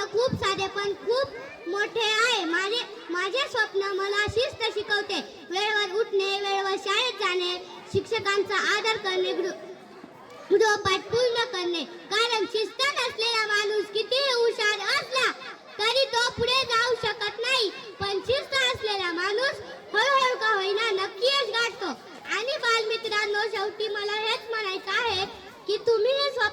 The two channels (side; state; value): both; identical; correlation 1.00